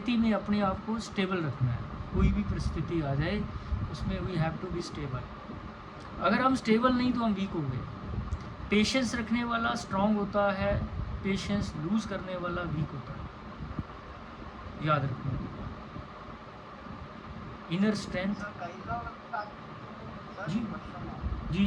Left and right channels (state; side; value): identical; both; correlation 1.00